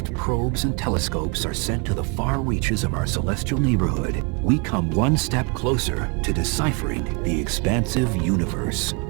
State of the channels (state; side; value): quieter; left; 31.3 dB